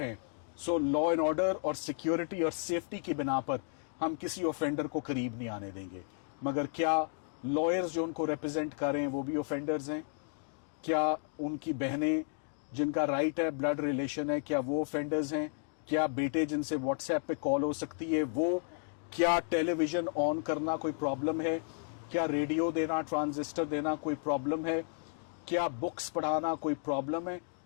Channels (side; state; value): right; silent; digital silence